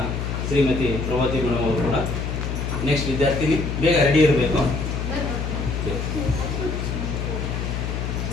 ಶ್ರೀಮತಿ ಪ್ರಭಾವತಿ ಮೇಡಮ್ ಅವರು ಕೂಡ ನೆಕ್ಸ್ಟ್ ವಿದ್ಯಾರ್ಥಿನಿ ಬೇಗ ರೆಡಿ ಇರಬೇಕು.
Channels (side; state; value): left; noise; hum, 3 dB below the sound